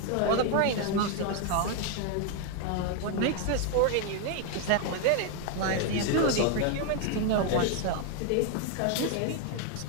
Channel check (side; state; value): both; different; correlation 0.01